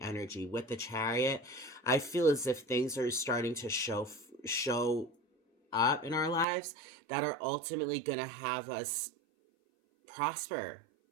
energy. With the Chariot, I feel as if things are starting to show up in our lives that are ultimately going to have us prosper.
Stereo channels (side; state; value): left; drops out; at 6.5 s